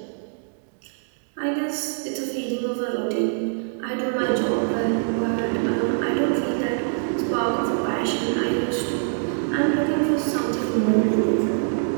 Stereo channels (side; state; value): left; silent; digital silence